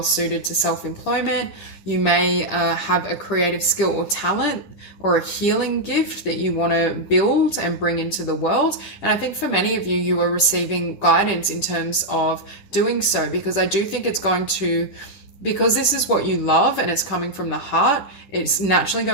suited to self-employment. You may have a creative skill or talent or a healing gift that you want to build and bring into the world. And I think for many of you, you are receiving guidance in terms of doing so, because I do think it's going to, because this is what you love and it's coming from the heart, it's naturally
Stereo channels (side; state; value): right; late; 10 ms